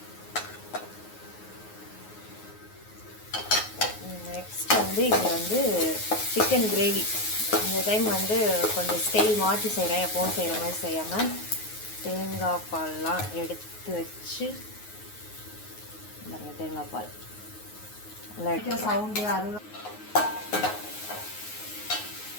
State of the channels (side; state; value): right; late; 9.5 ms